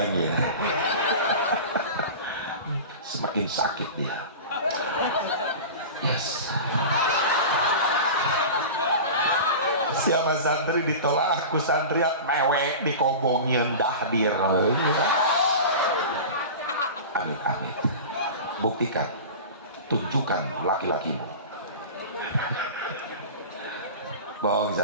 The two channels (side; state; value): both; inverted; correlation -0.32